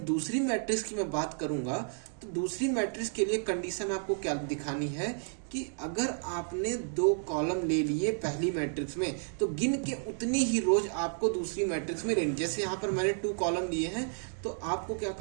दूसरी मैट्रिक्स की मैं बात करूंगा तो दूसरी मैट्रिक्स के लिए कंडीशन आपको क्या दिखानी है कि अगर आपने 2 कॉलम ले लिए पहली मैट्रिक्स में तो गिन के उतनी ही रोज आपको दूसरी मैट्रिक्स में लेनी। जैसे यहाँ पर मैंने 2 कॉलम लिए हैं तो आपको क्या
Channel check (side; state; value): left; silent; 57 dB below the other